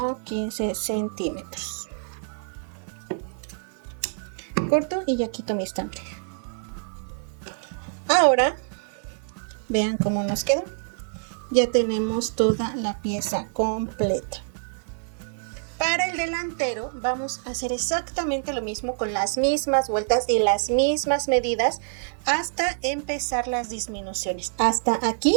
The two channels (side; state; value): left; silent; 59 dB below the other